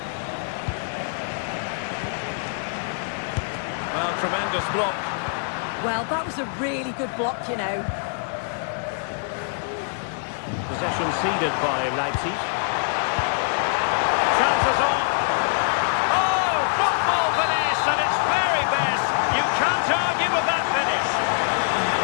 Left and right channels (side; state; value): right; silent; 62 dB below the other